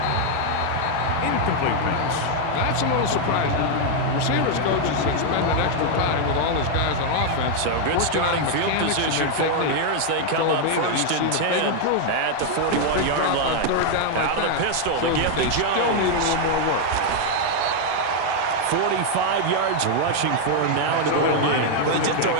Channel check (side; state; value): both; different; correlation 0.00